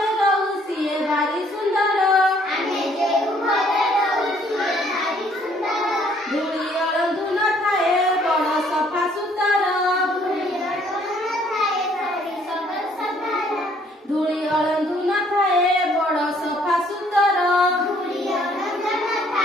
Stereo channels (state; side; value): normal; both; correlation 0.63